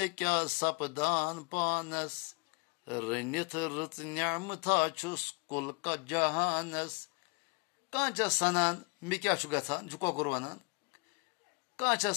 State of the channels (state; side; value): quieter; right; 32.9 dB